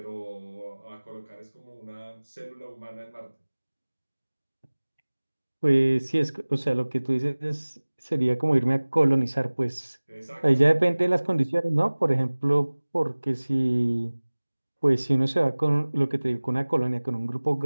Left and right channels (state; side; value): inverted; both; correlation -1.00